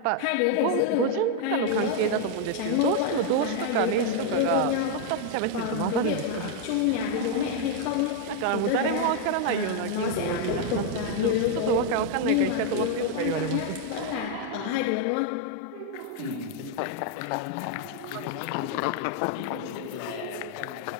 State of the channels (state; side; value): different; both; correlation 0.00